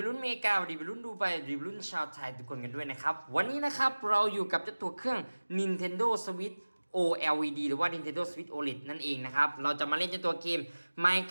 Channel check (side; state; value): both; inverted; correlation -1.00